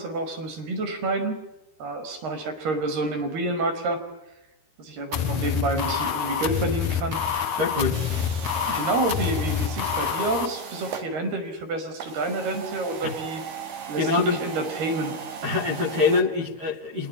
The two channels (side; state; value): left; late; 13 ms